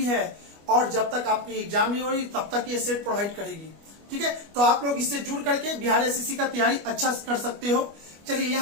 है, और जब तक आपकी एग्जाम नहीं हो रही तब तक ये सेट प्रोवाइड करेगी। ठीक है, तो आप लोग इससे जुड़ करके बिहार एसएससी का तैयारी अच्छा कर सकते हो। चलिए,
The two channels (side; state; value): left; late; 25 ms